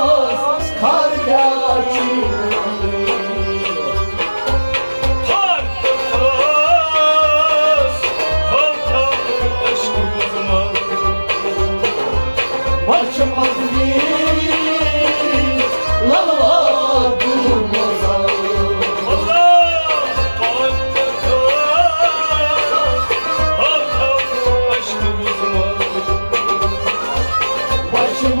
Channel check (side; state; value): both; inverted; correlation -1.00